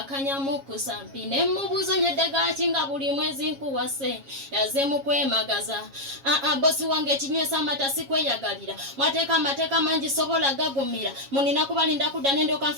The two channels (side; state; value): left; late; 7.3 ms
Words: kusampine mubuzo nyedde gakinga buli mwezi nkuwase yazze mu kwemagaza bosi wange kinywesa amata sikweyagalira mwateeka amateeka mangi sobola gagumira munina kubalinda kudda nende